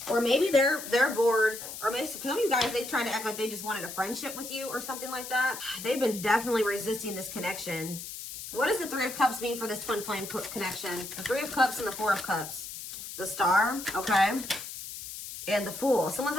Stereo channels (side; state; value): left; noise; hiss, 10 dB below the sound